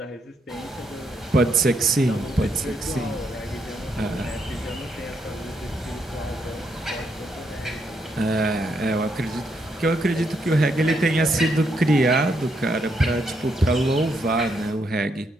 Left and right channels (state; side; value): normal; both; correlation 0.77